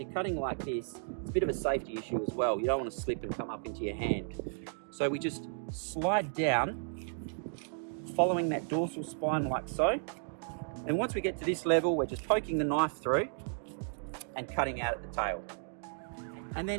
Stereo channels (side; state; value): left; silent; digital silence